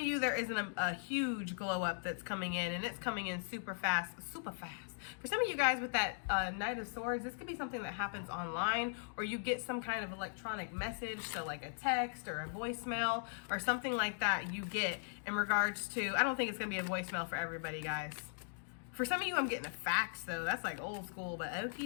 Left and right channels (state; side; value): silent; right; digital silence